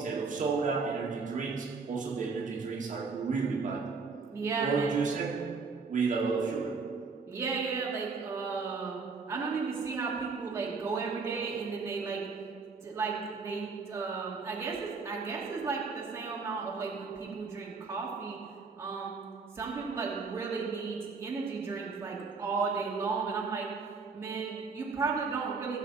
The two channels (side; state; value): left; quieter; 4.6 dB